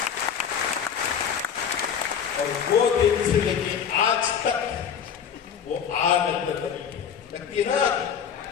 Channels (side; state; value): right; quieter; 7.7 dB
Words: और वो दिन से लेके आज तक वो आग अंदर लगती है ना,